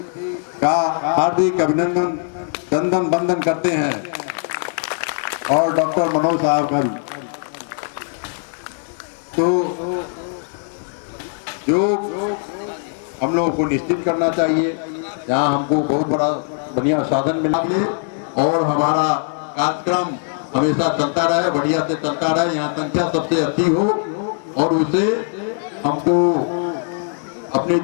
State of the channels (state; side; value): silent; right; 66 dB below the other